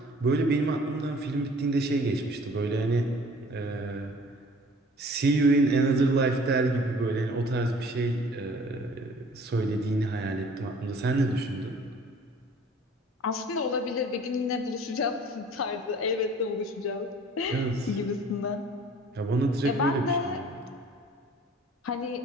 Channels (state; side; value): normal; both; correlation 0.51